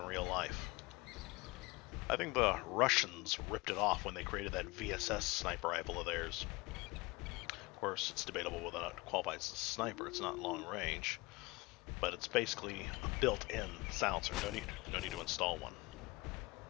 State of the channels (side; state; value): right; quieter; 23.5 dB